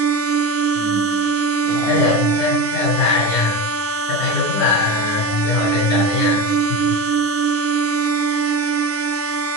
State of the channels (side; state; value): right; late; 9.6 ms